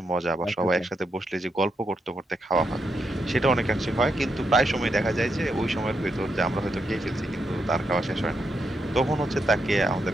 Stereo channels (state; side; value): normal; both; correlation 0.82